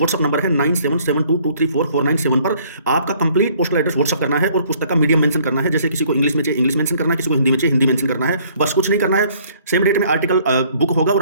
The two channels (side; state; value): both; inverted; correlation -0.60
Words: नंबर है 9772234497 पर आपका कंप्लीट पोस्टल एड्रेस व्हाट्सएप करना है और पुस्तक का मीडियम मेंशन करना है। जैसे किसी को इंग्लिश में चाहिए इंग्लिश मेंशन करना है, किसी को हिंदी में चाहिए हिंदी मेंशन करना है, बस कुछ नहीं करना है। सेम डेट में आर्टिकल बुक होगा और